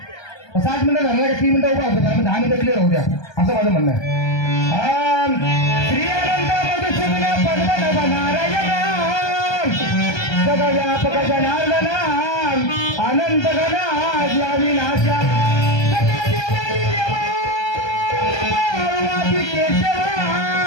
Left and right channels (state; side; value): late; right; 1.2 ms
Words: 60 मिनिटं झालं का 3 मिनिटं उभा होतो 10 मिनिटं क्लिअर होऊ द्या असं माझं म्हणणं आहे. श्री अनंत मधुसूदन पद्मनाभ नारायण जगव्यापक जनार्दन अनंत गणाजी अविनाशा सकल देवादी देवा पार्वती केशवा